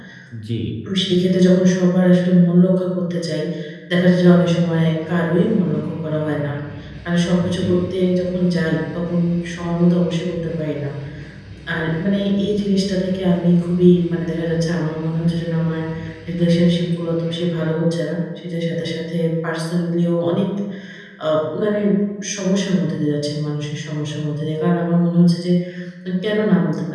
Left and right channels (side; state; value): both; identical; correlation 1.00